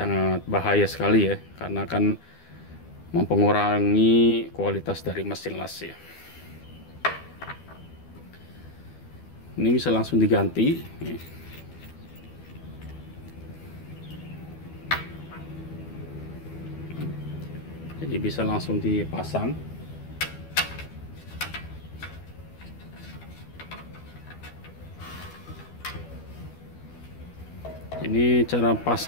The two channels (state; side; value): late; right; 12 ms